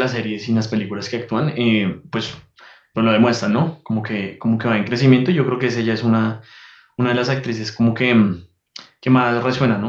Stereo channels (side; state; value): both; identical; correlation 1.00